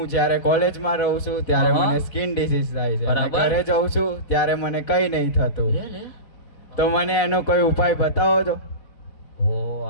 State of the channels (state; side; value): late; right; 4.1 ms